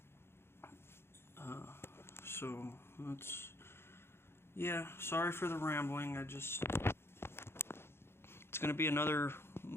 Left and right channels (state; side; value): late; right; 0.12 ms